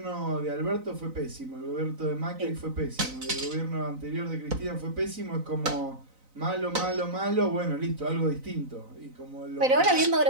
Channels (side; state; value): left; late; 4.0 ms